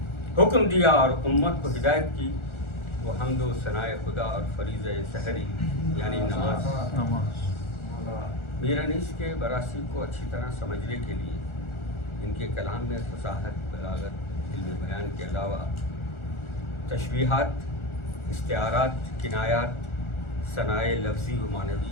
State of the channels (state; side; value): late; right; 1.4 ms